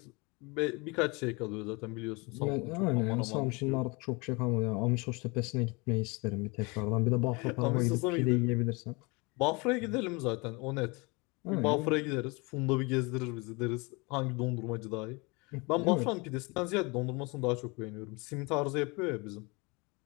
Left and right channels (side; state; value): right; quieter; 27.7 dB